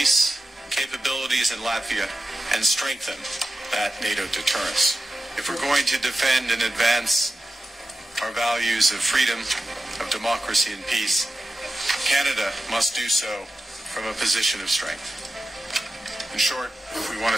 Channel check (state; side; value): normal; both; correlation 0.93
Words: capabilities in Latvia and strengthen that NATO deterrence. If we're going to defend and advance our values of freedom, of democracy and peace, Canada must do so from a position of strength. In short, if we want